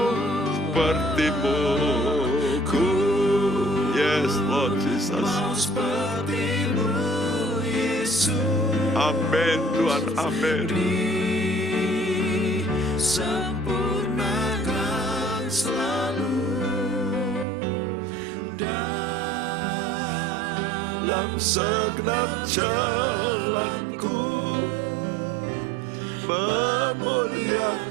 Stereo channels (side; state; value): left; drops out; at 17.4 s